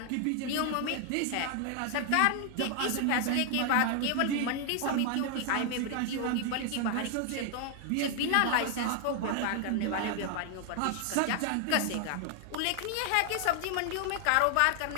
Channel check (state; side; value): different; both; correlation 0.00